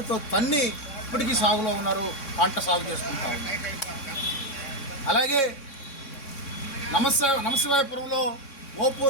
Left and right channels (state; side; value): late; right; 3.6 ms